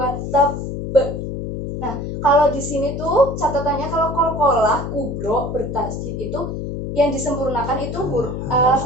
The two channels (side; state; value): left; noise; hum, 5 dB below the sound